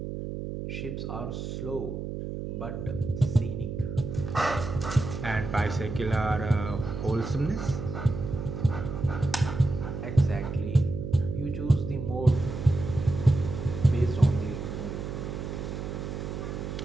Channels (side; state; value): right; noise; hum, 6 dB below the sound